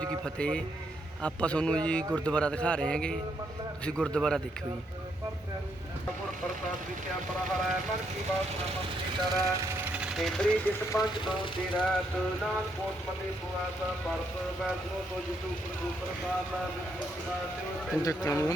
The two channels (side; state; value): both; normal; correlation 0.76